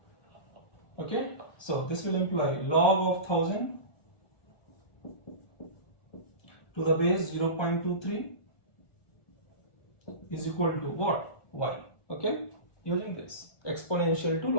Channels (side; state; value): right; late; 1.4 ms